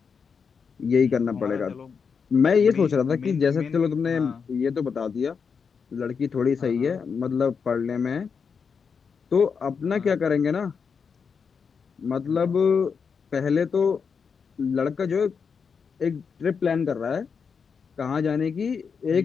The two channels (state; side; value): quieter; right; 6.0 dB